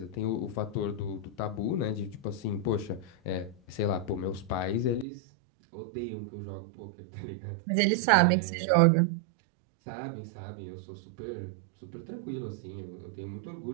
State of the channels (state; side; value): drops out; left; at 5.1 s